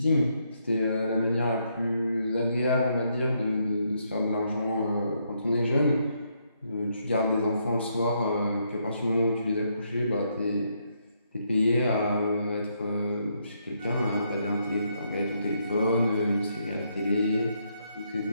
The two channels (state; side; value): inverted; both; correlation -0.76